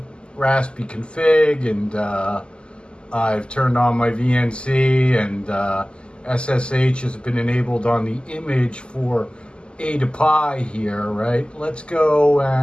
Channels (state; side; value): late; right; 0.050 ms